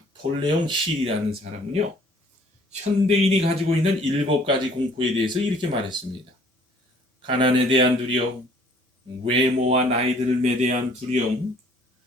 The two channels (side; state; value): both; normal; correlation 0.57